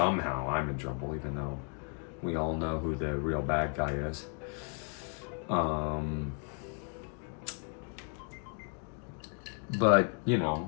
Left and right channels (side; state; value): right; quieter; 39.8 dB